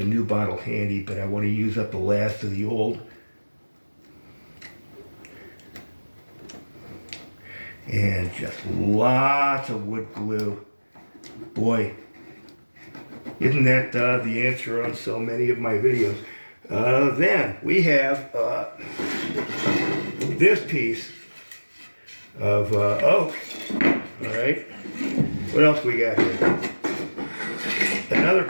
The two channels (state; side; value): inverted; both; correlation -1.00